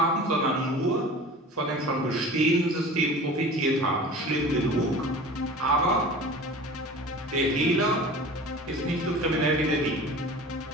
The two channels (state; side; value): normal; both; correlation 0.39